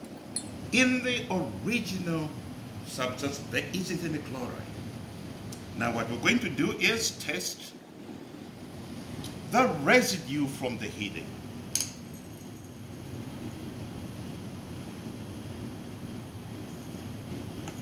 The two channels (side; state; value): both; identical; correlation 1.00